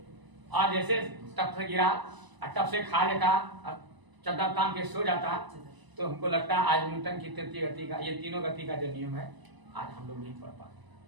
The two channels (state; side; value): late; left; 1.0 ms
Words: और जैसे टप से गिरा, टप से खा लेता, चद्दर तान के सो जाता, तो हमको लगता है आज न्यूटन की तृतीय गति का, ये तीनों गति का जो नियम है, आज हम लोग नहीं पढ़ पाते।